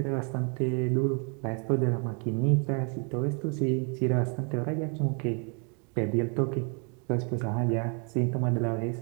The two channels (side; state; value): left; quieter; 37.8 dB